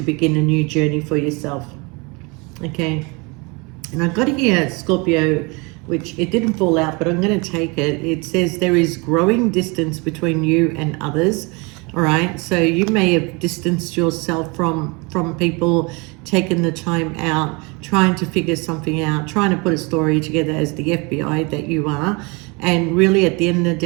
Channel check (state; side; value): quieter; left; 28.6 dB